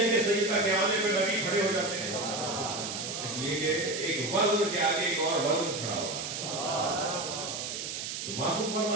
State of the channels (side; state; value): right; noise; hiss, 5 dB below the sound